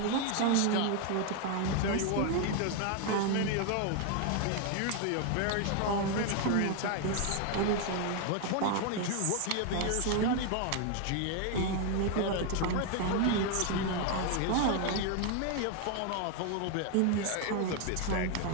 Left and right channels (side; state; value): both; different; correlation 0.01